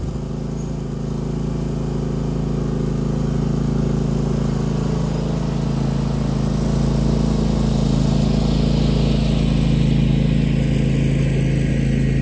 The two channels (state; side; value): identical; both; correlation 1.00